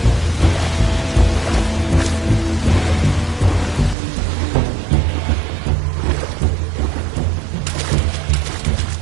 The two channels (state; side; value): drops out; left; at 4.0 s